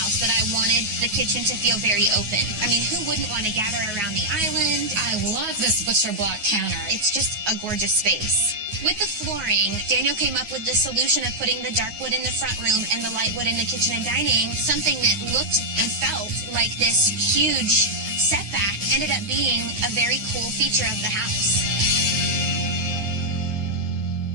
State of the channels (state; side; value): late; left; 9.5 ms